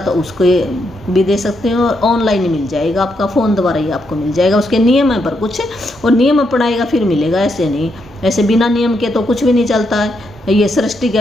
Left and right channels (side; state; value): both; normal; correlation 0.79